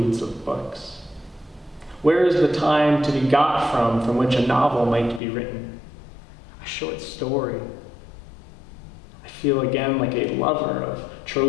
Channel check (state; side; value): drops out; right; at 5.2 s